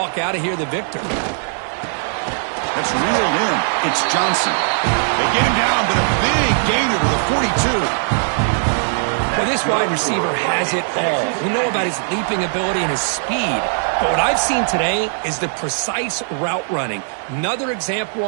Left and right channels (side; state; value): left; silent; digital silence